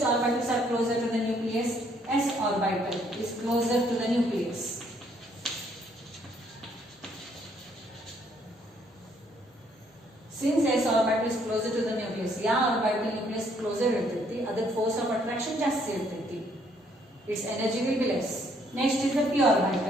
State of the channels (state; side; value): normal; both; correlation 0.67